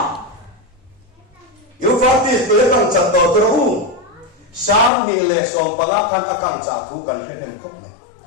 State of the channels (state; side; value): drops out; right; at 4.9 s